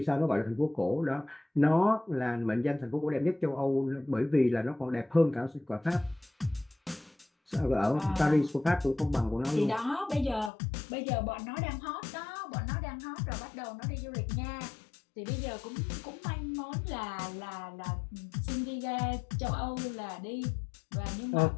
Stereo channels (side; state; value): right; drops out; at 10.5 s